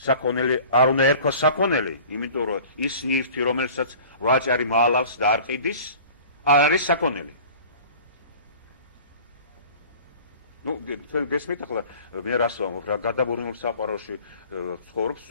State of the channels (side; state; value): both; inverted; correlation -0.45